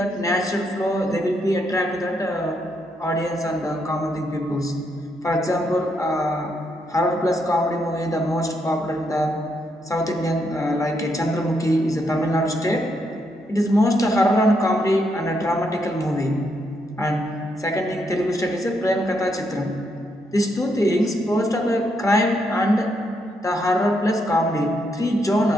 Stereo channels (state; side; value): normal; both; correlation 0.78